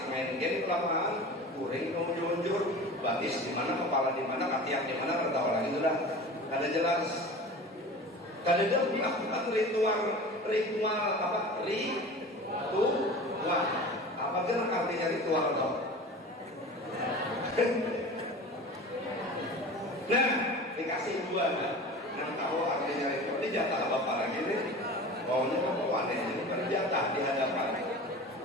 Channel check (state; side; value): normal; both; correlation 0.36